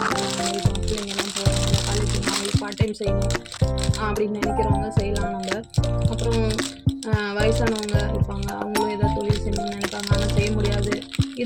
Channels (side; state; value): both; identical; correlation 1.00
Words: பிள்ளைங்கெல்லாம் போகிறாங்க, காலேஜ் பார்ட் டைம் செய்யணும் அப்படின்னு நினைக்கிறவங்க செய்யலாம். நம்ம அப்புறம் வயசானவங்க இருப்பாங்க, அவங்களும் ஏதாவது தொழில் செய்யணும்னு நினைப்பாங்க, ஆனால் செய்ய முடியாது.